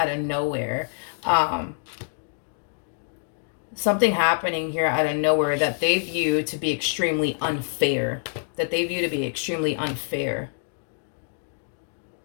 of nowhere. Something happening here out of nowhere that they view to be extremely unfair.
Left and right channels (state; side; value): silent; right; digital silence